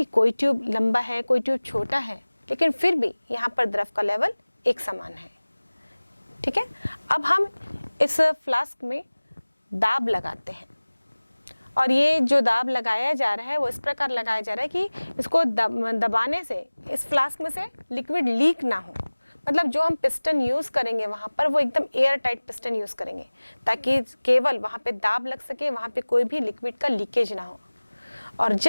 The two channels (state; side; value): inverted; both; correlation -1.00